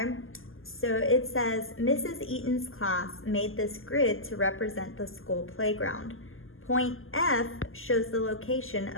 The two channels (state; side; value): late; right; 0.60 ms